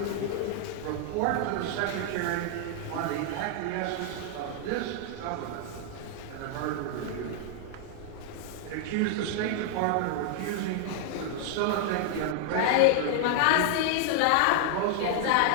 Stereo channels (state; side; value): different; both; correlation 0.00